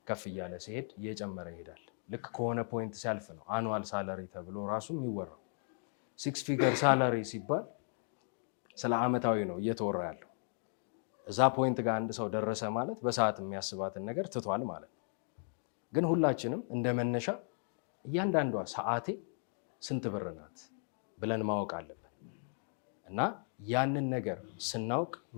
ከፍ እያለ ሲሄድ እየጨመረ ይሄዳል። ልክ ከሆነ ፖይንት ሲያልፍ ነው አኑዋል ሳለሪ ተብሎ ራሱ የሚወራው። 6 ፊገር ሳለሪ ሲባል ስለ አመታዊ ነው እየተወራ ያለው። እዛ ፖይንት ጋር አንድ ሰው ደረሰ ማለት በሰዓት የሚያስባትን ነገር ትቷል ማለት ነው። ግን ሁላችንም እንደ መነሻ እያንዳንዷ ሰዓቴ ስንት ብር ናት ብለን ማወቅ አለብን እና ያንን ነገር ስናውቅ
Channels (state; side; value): silent; right; 54 dB below the other